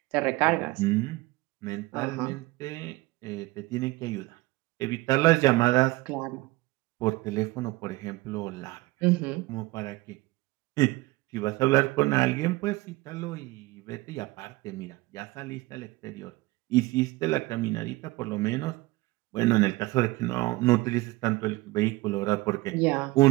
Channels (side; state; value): left; quieter; 20.7 dB